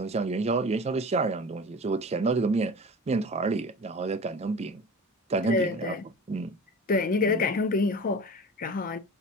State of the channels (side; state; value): both; normal; correlation 0.36